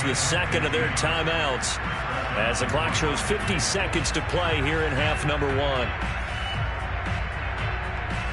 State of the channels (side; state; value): both; identical; correlation 1.00